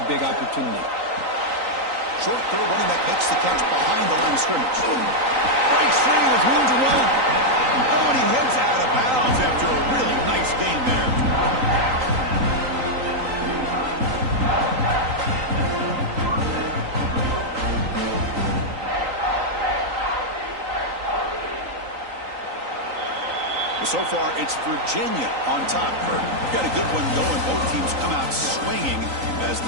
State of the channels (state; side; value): late; left; 3.9 ms